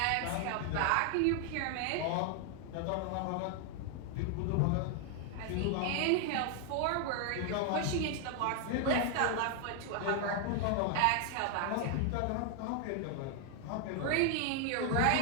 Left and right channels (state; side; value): different; both; correlation 0.00